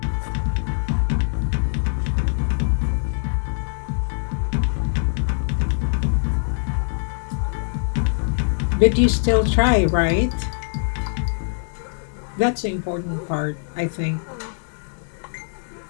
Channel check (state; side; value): silent; right; 64 dB below the other